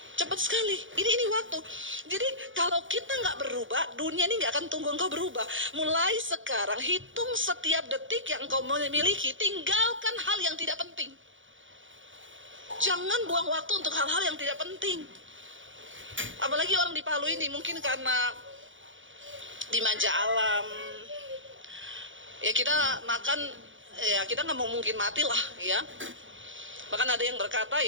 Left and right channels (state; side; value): late; left; 0.56 ms